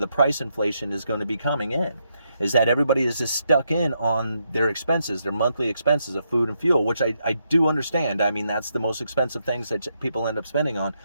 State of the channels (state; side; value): inverted; both; correlation -0.80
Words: price inflation is going to be coming in, is that everybody is just stuck in on their expenses, their monthly expenses of food and fuel, which I do understand. I mean, that's the most expensive things that people end up spending on.